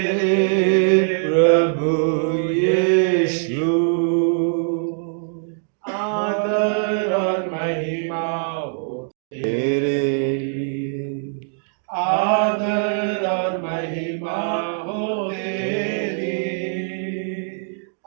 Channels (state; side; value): silent; left; digital silence